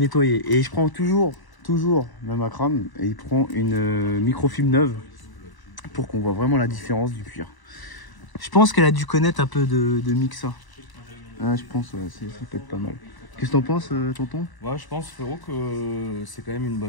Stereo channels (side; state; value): right; late; 1.0 ms